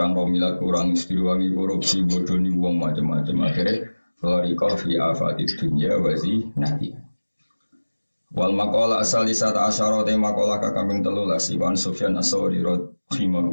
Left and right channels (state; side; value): inverted; both; correlation -1.00